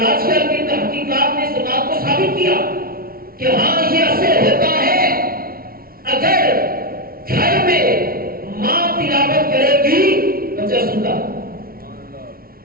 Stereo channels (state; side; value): late; left; 0.43 ms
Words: آج کل کی تحقیقات نے اس بات کو ثابت کیا کہ ہاں یہ اثر ہوتا ہے۔ اگر گھر میں ماں تلاوت کرے گی بچہ سنتا،